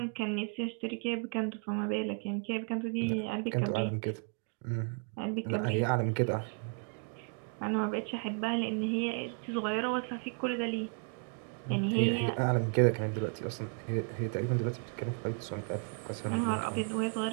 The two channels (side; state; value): left; quieter; 39.2 dB